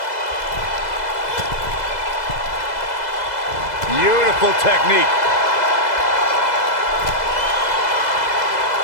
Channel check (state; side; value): late; right; 2.0 ms